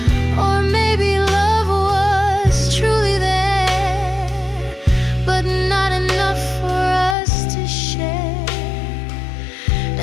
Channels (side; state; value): right; drops out; at 7.2 s